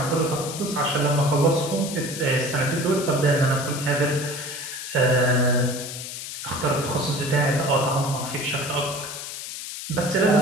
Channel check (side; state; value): left; noise; hiss, 8 dB below the sound